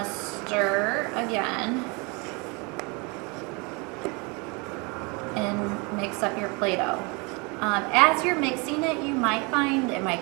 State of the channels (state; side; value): quieter; left; 29.5 dB